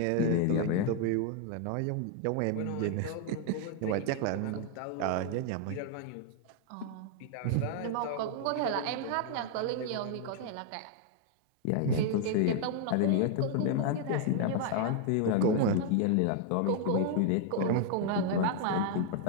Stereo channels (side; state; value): both; different; correlation 0.00